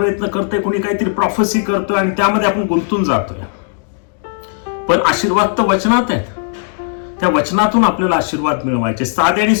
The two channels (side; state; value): right; silent; 57 dB below the other